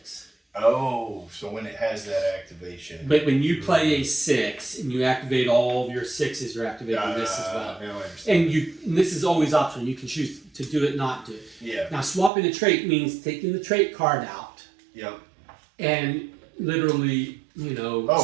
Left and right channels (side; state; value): left; drops out; at 12.3 s